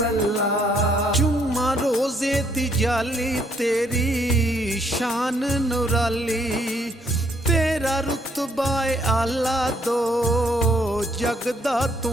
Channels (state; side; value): normal; both; correlation 0.68